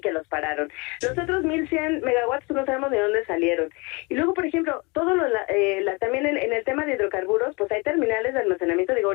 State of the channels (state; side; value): quieter; right; 28.4 dB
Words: que los pararon. Los otros 1100 megawatts no sabemos de dónde salieron. Y luego, por ejemplo, también en el tema de hidrocarburos, pues hay terminales de almacenamiento, digo,